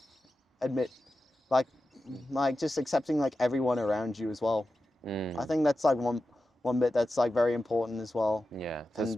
admit like just accepting like everyone around you as well. I think that's like one bit that's like very important as well. Yeah. And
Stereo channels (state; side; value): normal; both; correlation 0.92